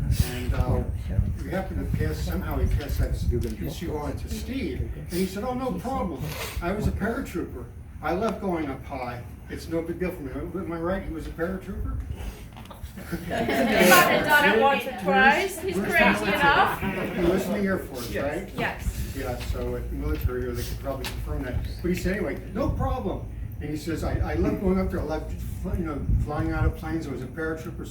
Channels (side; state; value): both; identical; correlation 1.00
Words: we happened to somehow he passed that issue on to Steve, and he said, oh, no problem. I was a paratrooper. I love going up high. It's no big deal for me. Am I right? He was a paratrooper? He's done it once or twice. He's crazy enough. He was in the Air Force, right? Yes. Yeah, so at the military, they could probably confirm that. But he said, anyway, no problem. And he says, I love going up there. I love, flying out of planes. I was a paratrooper.